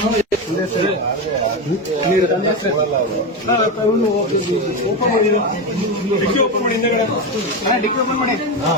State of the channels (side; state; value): both; normal; correlation 0.15